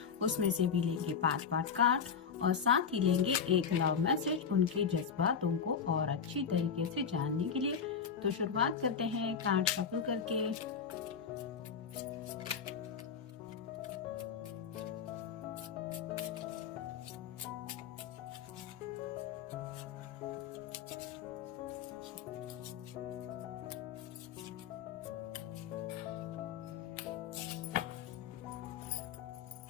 उसमें से भी लेंगे 5 कार्ड और साथ ही लेंगे एक लव मैसेज उनके जज्बातों को और अच्छी तरीके से जानने के लिए। तो शुरुआत करते हैं कार्ड शफल करके।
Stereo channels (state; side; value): quieter; right; 6.7 dB